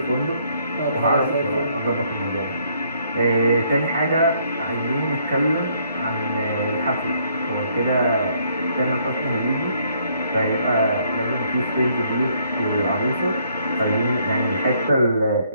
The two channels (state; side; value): inverted; both; correlation -0.68